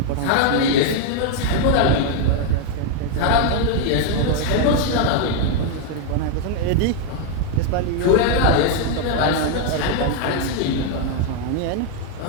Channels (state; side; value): different; both; correlation 0.00